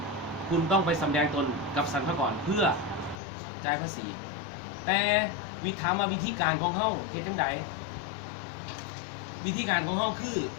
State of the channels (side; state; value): right; drops out; at 3.2 s